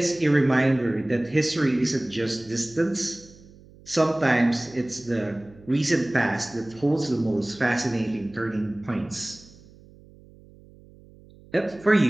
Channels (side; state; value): right; noise; hum, 24 dB below the sound